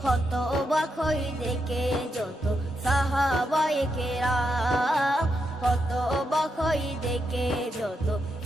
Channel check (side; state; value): both; normal; correlation 0.83